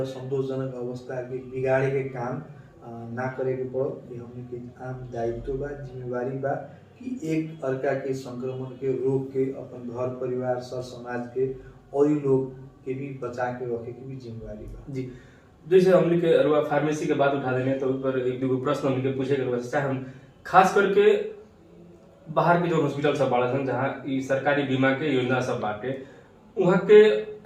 संतोषजनक अवस्था के बिगाड़े के काम ना करे के पड़ो। ये हमने के आम दायित्व बा, जिम्मेवारी बा कि एक अर्का के संक्रमण के रोक के अपन घर परिवार सर समाज के और लोग के भी बचा के रखे के भी जिम्मेवारी बा। जी, जैसे हमने के अरुआ फार्मेसी के बात उठा देने तो ऊपर एक दो प्रश्न हमने के पूछे के चाहे हम खास करके बाहर के जो हॉस्पिटल सब बाड़ा सन जहाँ ई सरकारी बीमा के योजना सब बाटे वहाँ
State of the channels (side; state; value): both; identical; correlation 1.00